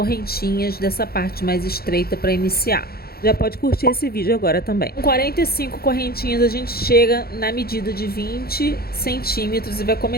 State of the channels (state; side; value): late; right; 0.45 ms